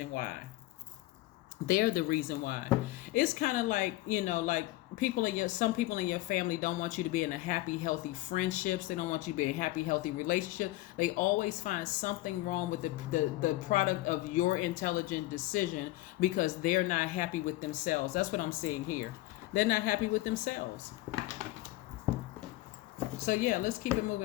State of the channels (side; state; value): right; quieter; 17.8 dB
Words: why. It's kind of like, like some people in your family don't want you to be in a happy, healthy friendships. They don't want you to be in a happy, healthy relationship. They always find something wrong with the product of your intelligent decision, because they're not happy with themselves. That's what I'm seeing here. They're not happy with themselves. So yeah, let's keep it